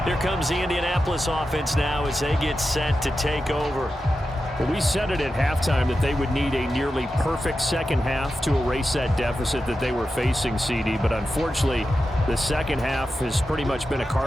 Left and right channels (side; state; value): both; normal; correlation 0.91